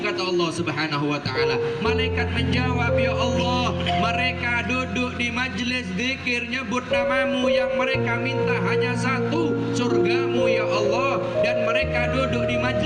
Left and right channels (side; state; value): both; identical; correlation 1.00